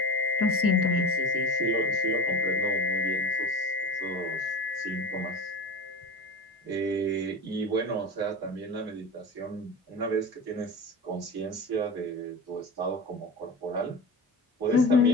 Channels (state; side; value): normal; both; correlation 0.28